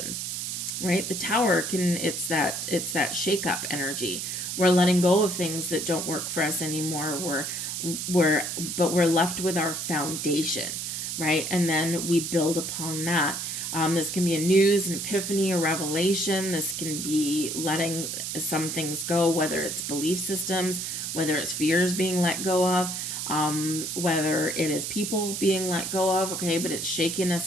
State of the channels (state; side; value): noise; right; hiss, 4 dB below the sound